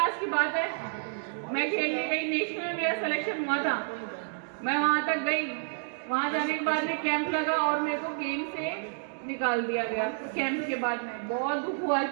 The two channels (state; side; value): silent; left; digital silence